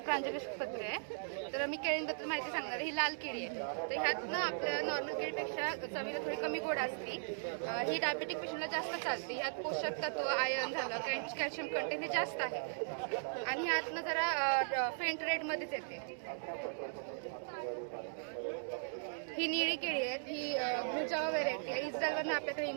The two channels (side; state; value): left; silent; digital silence